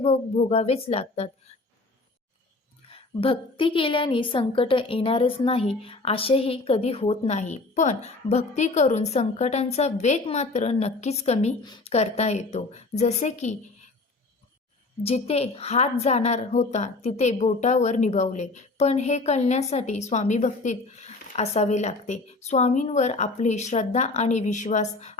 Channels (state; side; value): quieter; right; 3.4 dB